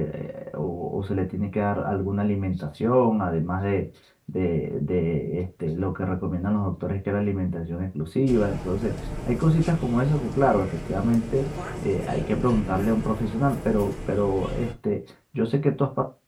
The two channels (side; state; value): both; identical; correlation 1.00